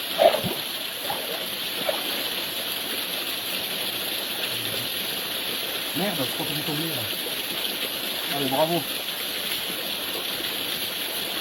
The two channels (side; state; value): both; identical; correlation 1.00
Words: Merde, je crois que j'ai tombé là. Allez, bravo.